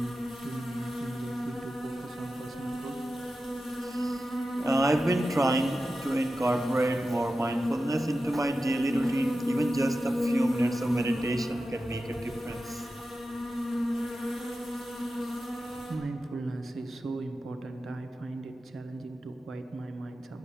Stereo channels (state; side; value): normal; both; correlation 0.92